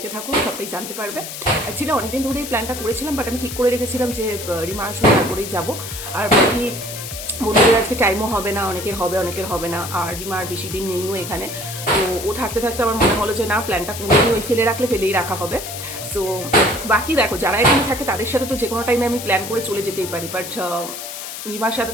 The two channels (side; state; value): left; noise; hiss, 9 dB below the sound